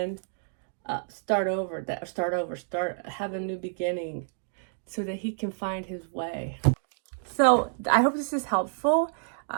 start have a new beginning. So that he can find his way. So I hope this is helpful.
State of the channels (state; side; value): silent; left; digital silence